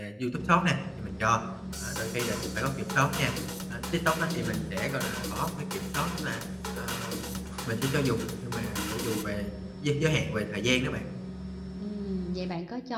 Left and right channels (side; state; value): both; identical; correlation 1.00